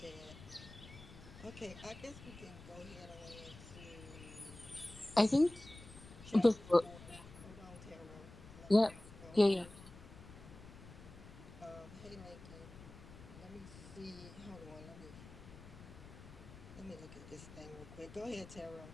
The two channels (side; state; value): left; noise; rumble, 16 dB below the sound